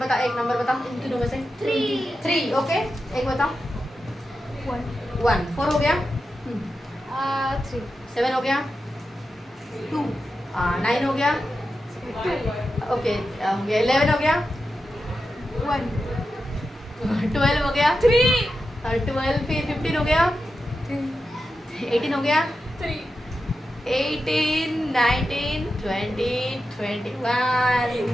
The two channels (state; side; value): normal; both; correlation 0.90